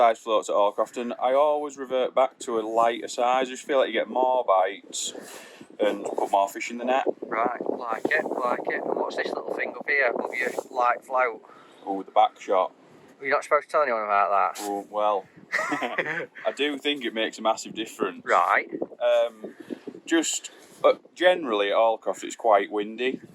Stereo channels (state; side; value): identical; both; correlation 1.00